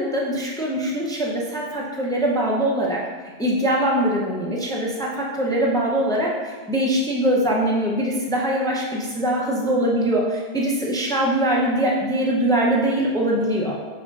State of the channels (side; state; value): both; normal; correlation 0.11